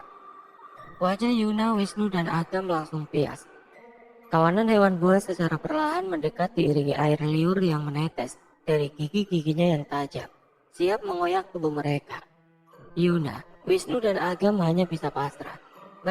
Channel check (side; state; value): both; identical; correlation 1.00